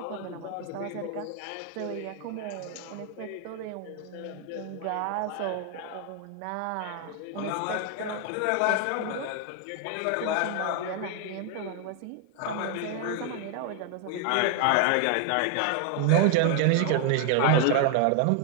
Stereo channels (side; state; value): both; different; correlation 0.00